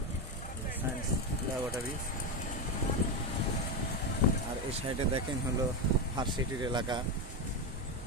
সায়েন্স ল্যাবরেটরি। আর এই সাইডে দেখেন হলো ভার্সিটির এলাকা,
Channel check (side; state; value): both; normal; correlation 0.11